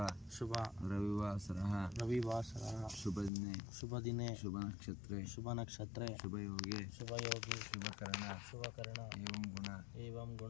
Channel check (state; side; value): drops out; right; at 3.3 s